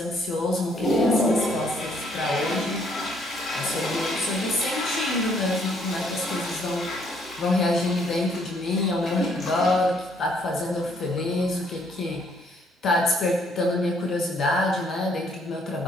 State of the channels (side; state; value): both; normal; correlation 0.67